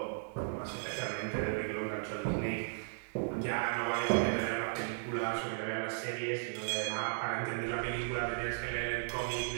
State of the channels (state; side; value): silent; left; digital silence